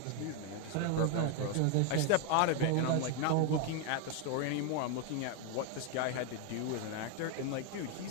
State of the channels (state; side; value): different; both; correlation 0.01